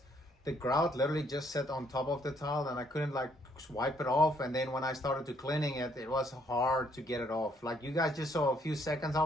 The grout literally just sat on top of the tile and I couldn't like wipe it off, and then when I started to cleaning it, it was hard to get it off. Like you guys just saw a few seconds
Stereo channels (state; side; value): normal; both; correlation 0.68